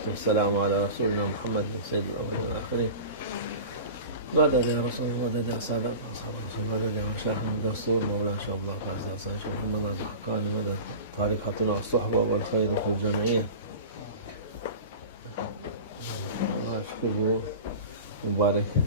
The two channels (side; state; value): both; inverted; correlation -0.33